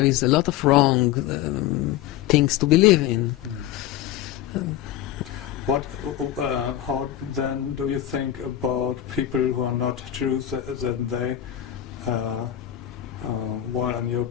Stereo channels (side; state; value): right; quieter; 12.1 dB